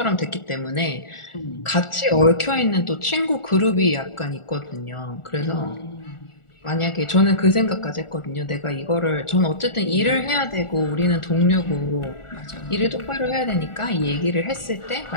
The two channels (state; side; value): late; right; 1.4 ms